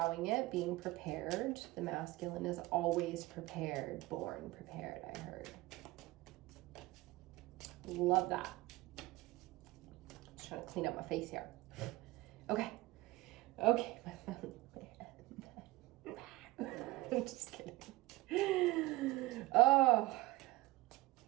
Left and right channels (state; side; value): quieter; left; 19.7 dB